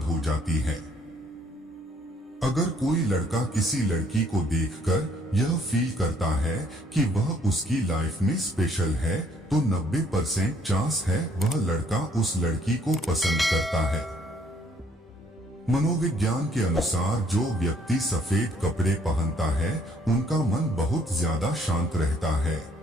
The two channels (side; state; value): both; normal; correlation 0.64